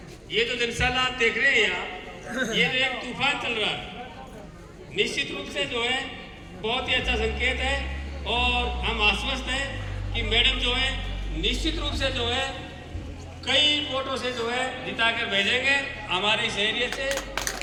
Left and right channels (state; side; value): identical; both; correlation 1.00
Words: ये जो जनसैलाब आप देख रहे हैं यहाँ, ये जो एक तूफान चल रहा है, निश्चित रूप से जो है बहुत ही अच्छा संकेत है। और हम आश्वस्त हैं कि मैडम जो है निश्चित रूप से जो है कई वोटों से जो है जिता कर भेजेंगे हमारे इस एरिया से।